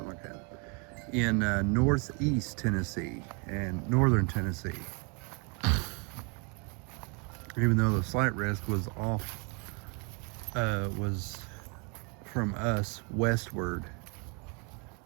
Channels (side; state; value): left; quieter; 33.6 dB